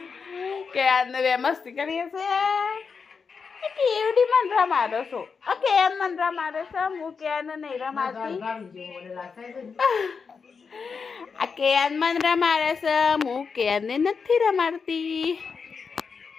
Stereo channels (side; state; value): right; quieter; 5.5 dB